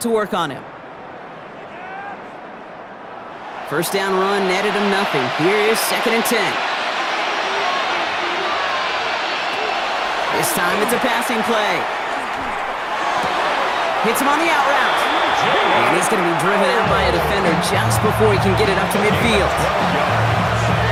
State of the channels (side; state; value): both; identical; correlation 1.00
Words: work on him. First down run netted him nothing. Here is 2nd and 10. This time it's a passing play. Hits him on the out route. And he's going to be driven out by a defender just before he can get it up to midfield.